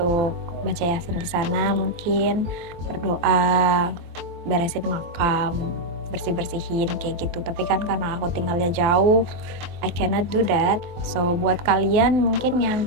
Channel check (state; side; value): late; left; 23 ms